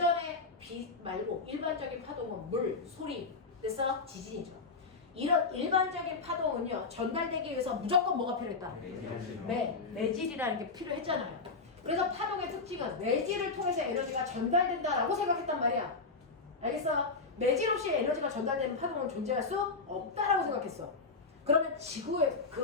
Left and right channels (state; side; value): quieter; right; 4.1 dB